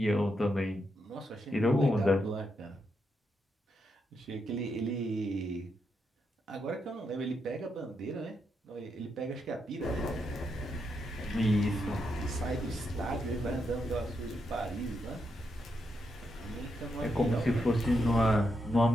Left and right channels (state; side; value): normal; both; correlation 0.82